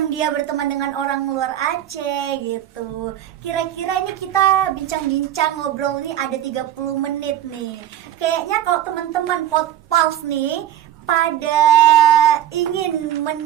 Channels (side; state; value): left; quieter; 11.5 dB